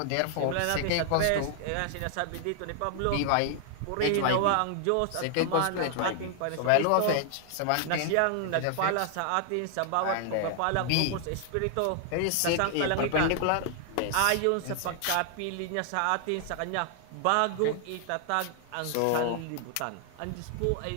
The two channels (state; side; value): different; both; correlation 0.00